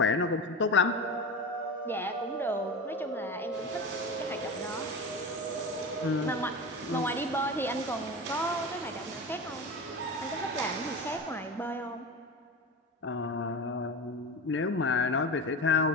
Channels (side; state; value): both; normal; correlation 0.27